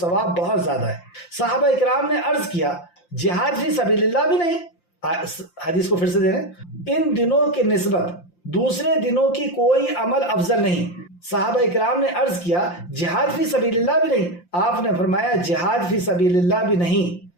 بہت زیادہ ہے۔ صحابہ اکرام نے عرض کیا جہاد فی سبیل اللہ بھی نہیں؟ حدیث کو پھر سے دے رہے ہیں، ان دنوں کی نسبت دوسرے دنوں کی کوئی عمل افضل نہیں۔ صحابہ اکرام نے عرض کیا جہاد فی سبیل اللہ بھی نہیں؟ آپ نے فرمایا جہاد فی سبیل اللہ بھی نہیں،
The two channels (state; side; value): late; right; 5.7 ms